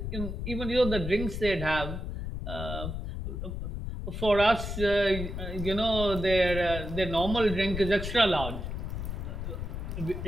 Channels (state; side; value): noise; left; rumble, 5 dB below the sound